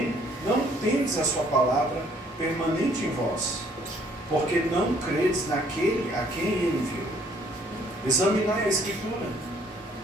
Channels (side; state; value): both; normal; correlation 0.62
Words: não tendes a sua palavra permanente em vós, porque não credes naquele a quem ele enviou. Examinai a Escritura,